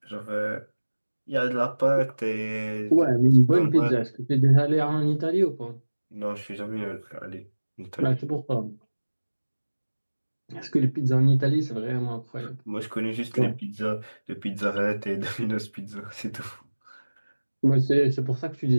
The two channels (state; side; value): inverted; both; correlation -1.00